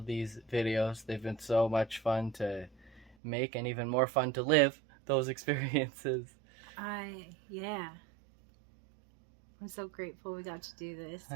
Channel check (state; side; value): drops out; left; at 3.2 s